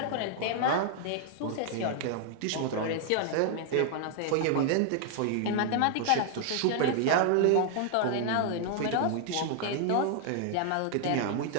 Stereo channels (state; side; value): different; both; correlation 0.00